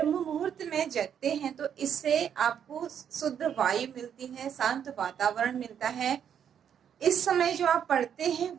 मुहूर्त में जगते हैं तो इससे आपको शुद्ध वायु मिलती है, शांत वातावरण मिलता है। इस समय जो आप पढ़ते हैं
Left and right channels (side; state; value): left; quieter; 8.6 dB